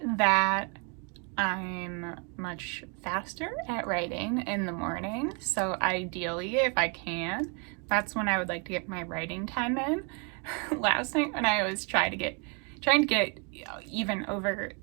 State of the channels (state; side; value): quieter; left; 35.4 dB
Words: that I'm much faster at writing in the morning, so ideally, if I can, that's when I would like to get my writing time in. Last night when I was trying to get even over